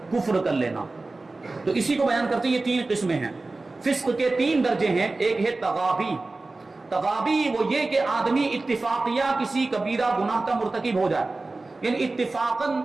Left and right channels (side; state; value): left; quieter; 3.3 dB